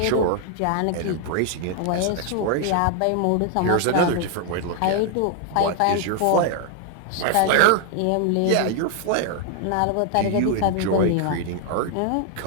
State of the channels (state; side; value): different; both; correlation 0.00